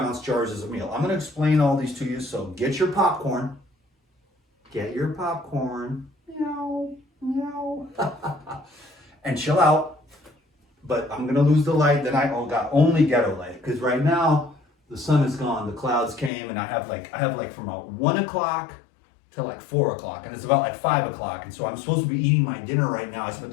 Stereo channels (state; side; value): drops out; right; at 16.3 s